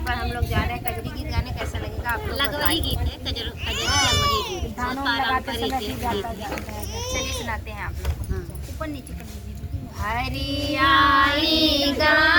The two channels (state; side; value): identical; both; correlation 1.00